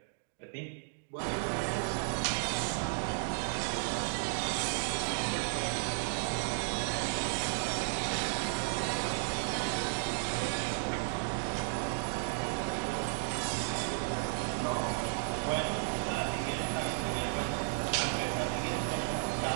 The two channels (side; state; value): left; silent; 55 dB below the other